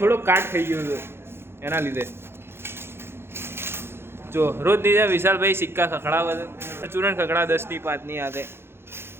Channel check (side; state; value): left; late; 0.11 ms